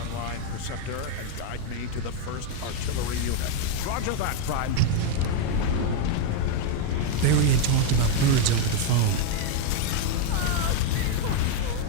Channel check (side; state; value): both; different; correlation 0.01